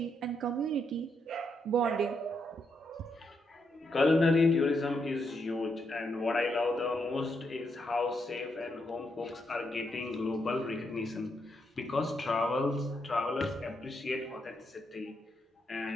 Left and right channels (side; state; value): both; normal; correlation 0.79